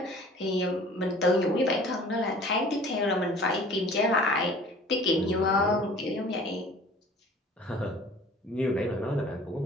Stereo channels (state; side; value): normal; both; correlation 0.48